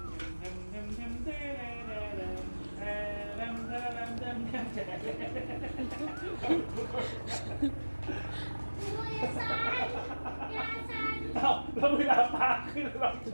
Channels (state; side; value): inverted; both; correlation -1.00